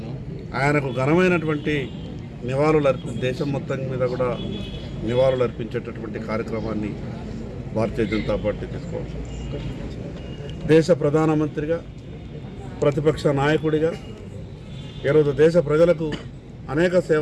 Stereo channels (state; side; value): identical; both; correlation 1.00